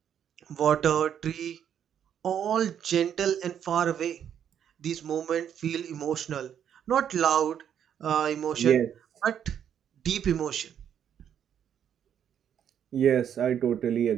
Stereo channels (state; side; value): quieter; left; 9.1 dB